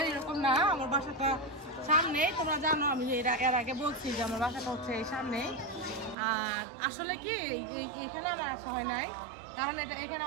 এরকম না। আমার বাসাটা সামনেই, তোমরা জানো আমি এর আগে বলছি যে আমার বাসাটা হচ্ছে এই সামনেই। আর আসলে কি এখানে আমার আসা হয় নাই, কারণ এখানে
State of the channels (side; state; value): left; drops out; at 6.2 s